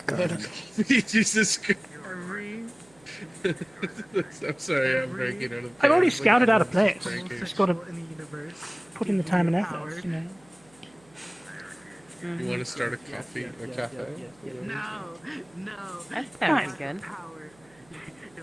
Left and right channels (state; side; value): noise; right; hum, 29 dB below the sound